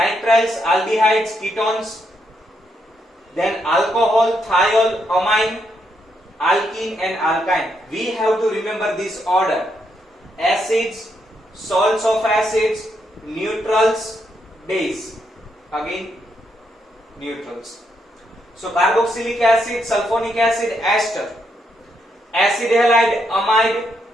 aldehydes, ketones. Then alcohol, thiol, amine, alkene and alkyne. We have to remember this order: acids, salts of acids, neutrals, base. Again neutrals. So carboxylic acid, sulfonic acid, ester, acid halide, amide,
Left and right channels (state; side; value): normal; both; correlation 0.78